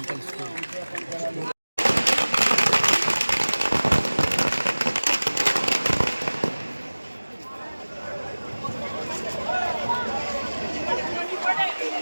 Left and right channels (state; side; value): inverted; both; correlation -1.00